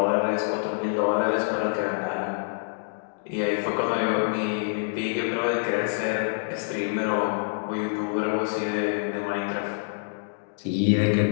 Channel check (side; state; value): right; silent; digital silence